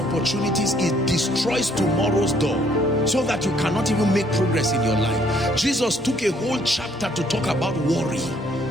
It destroys tomorrow's door, so that you cannot even make progress in your life. Jesus took a whole chapter to talk about worry.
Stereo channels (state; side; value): normal; both; correlation 0.64